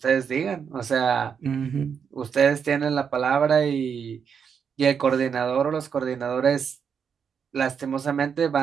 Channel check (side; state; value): left; quieter; 6.9 dB